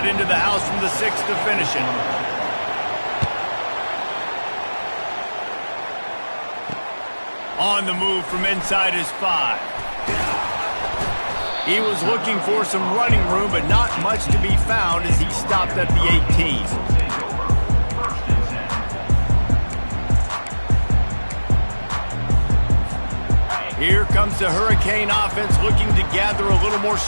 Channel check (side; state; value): both; inverted; correlation -1.00